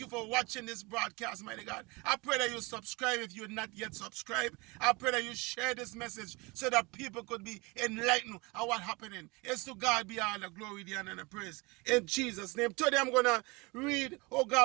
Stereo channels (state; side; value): quieter; left; 26.0 dB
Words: you for watching this broadcast, mighty God. I pray that you subscribe if you're not yet subscribed. I pray that you share this message so that people could be enlightened on what's happening. It's to God be all the glory, the honor, and the praise. In Jesus' name. Today I'm going to read, oh